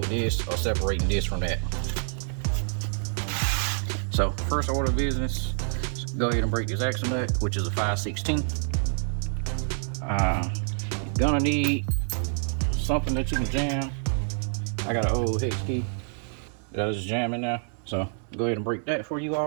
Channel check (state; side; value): silent; left; 60 dB below the other